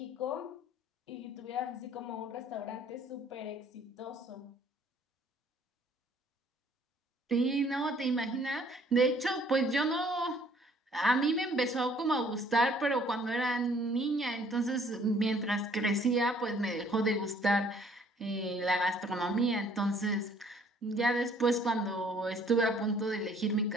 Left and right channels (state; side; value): normal; both; correlation 0.59